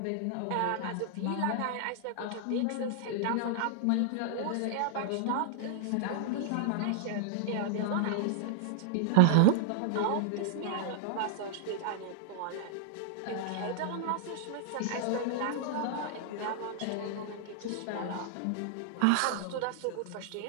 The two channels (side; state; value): both; different; correlation -0.01